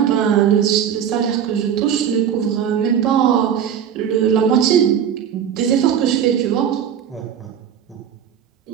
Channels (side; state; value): left; quieter; 8.7 dB